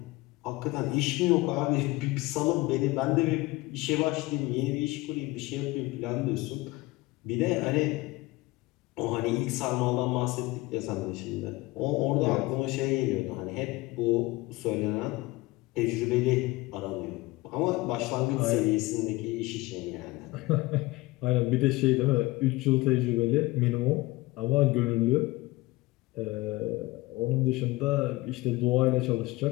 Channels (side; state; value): right; quieter; 20.7 dB